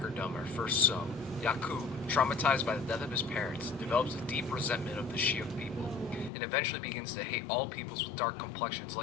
are first sown. Yakub, traumatized by the death of his parents, develops a deep resentment of the Shiak people, and eventually begins to hate all peoples with dark complexions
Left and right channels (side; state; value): right; drops out; at 6.3 s